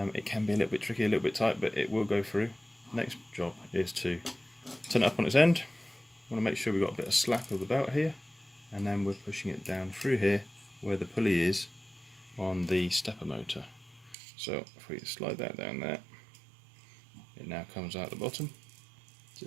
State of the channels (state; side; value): drops out; left; at 14.2 s